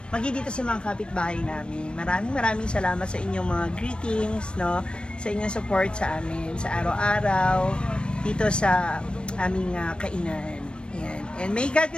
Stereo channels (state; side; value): late; right; 0.053 ms